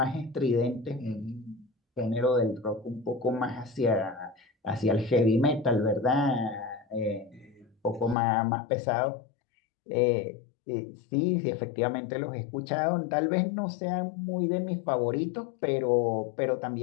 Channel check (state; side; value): drops out; right; at 8.2 s